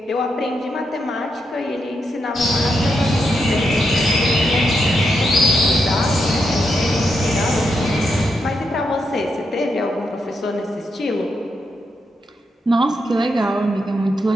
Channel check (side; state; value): both; normal; correlation 0.82